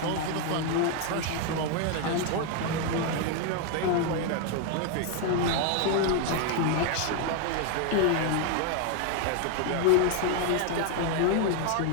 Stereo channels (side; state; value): both; different; correlation 0.00